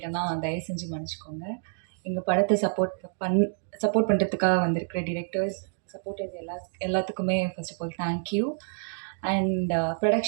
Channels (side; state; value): left; silent; digital silence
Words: தயவு செஞ்சு மன்னிச்சுக்கோங்க. எங்கள் படத்தை சப்போர்ட் பண்ணுறதுக்காக வந்திருக்கிற டிரெக்டர்ஸ், சப்போர்ட்டர்ஸ் எல்லாத்துக்குமே first of all thank you. And